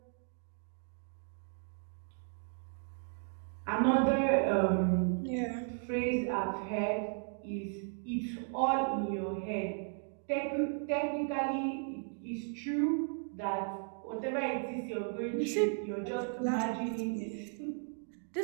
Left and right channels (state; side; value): silent; left; 54 dB below the other